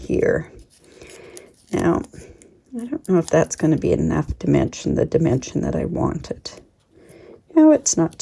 Now, I don't know if that's going to be enough dimension, the dimension that I wanted. No, it's not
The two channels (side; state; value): both; identical; correlation 1.00